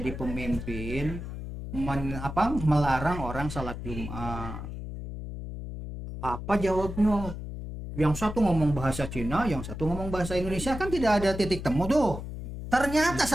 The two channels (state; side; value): noise; left; hum, 8 dB below the sound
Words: pemimpin melarang orang salat Jumat. Apa jawabnya? Yang satu ngomong bahasa Cina, yang satu ngomong bahasa Indonesia, kan tidak ada titik temu tuh. Ternyata